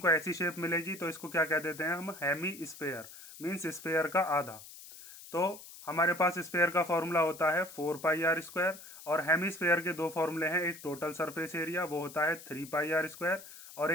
ऐसी शेप मिलेगी, तो इसको क्या कह देते हैं हम, हेमी स्फेयर, मीन्स स्फेयर का आधा। तो हमारे पास स्फेयर का फॉर्मूला होता है 4πr²। और हेमीस्फेयर के दो फॉर्मूले हैं, एक टोटल सरफेस एरिया वो होता है 3πr², और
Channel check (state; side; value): noise; left; hiss, 16 dB below the sound